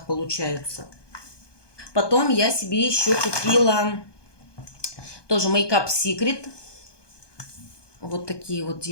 получаются. Потом я себе еще купила тоже Makeup Secret. Вот такие вот,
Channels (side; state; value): right; late; 1.2 ms